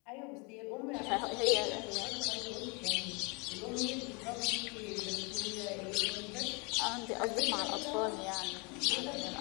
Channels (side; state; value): right; quieter; 31.1 dB